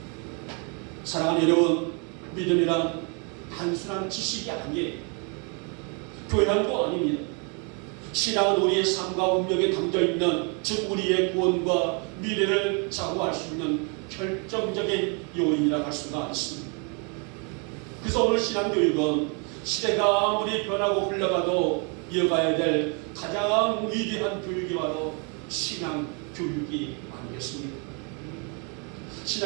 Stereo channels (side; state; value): left; quieter; 35.7 dB